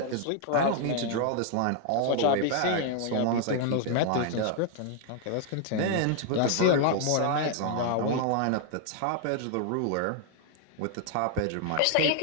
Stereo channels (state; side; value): different; both; correlation 0.00